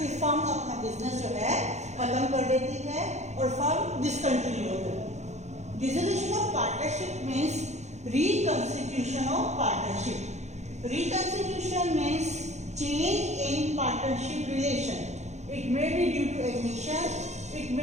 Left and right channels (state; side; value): late; left; 0.33 ms